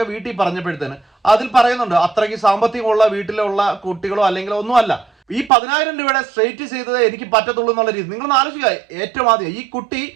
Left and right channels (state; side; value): drops out; left; at 5.5 s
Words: വീട്ടിൽ പറഞ്ഞപ്പോഴത്തേന് അതിൽ പറയുന്നുണ്ട് അത്രയ്ക്ക് സാമ്പത്തികമുള്ള വീട്ടിലുള്ള കുട്ടികളോ അല്ലെങ്കിൽ ഒന്നുമല്ല, ഈ 10,000 രൂപയുടെ സ്ട്രെയിറ്റ് ചെയ്തത് എനിക്ക് പറ്റത്തുള്ളൂ എന്നുള്ള രീതി. നിങ്ങളൊന്ന് ആലോചിക്കുക, ഏറ്റവും ആദ്യം ഈ കുട്ടി